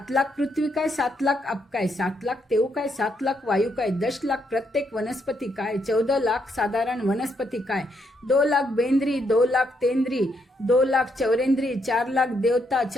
लाख पृथ्वी काय 7 लाख अप काय 7 लाख तेव काय 7 लाख वायू काय 10 लाख प्रत्येक वनस्पती काय 14 लाख साधारण वनस्पती काय 2 लाख बेंद्री 2 लाख तेंद्री 2 लाख चौरेंद्री 4 लाख देवता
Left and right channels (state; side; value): normal; both; correlation 0.76